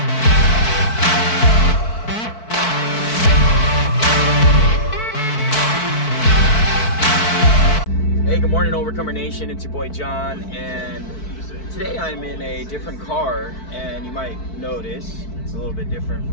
hey, good morning, Overcomer Nation. It's your boy John, and today I'm in a different car, and you might notice it's a little bit different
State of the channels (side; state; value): right; late; 4.6 ms